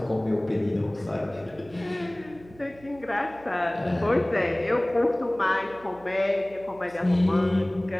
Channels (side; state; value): right; noise; hum, 23 dB below the sound